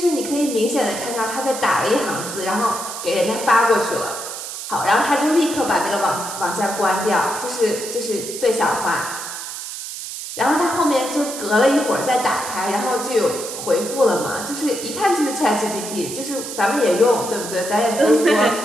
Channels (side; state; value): right; noise; hiss, 8 dB below the sound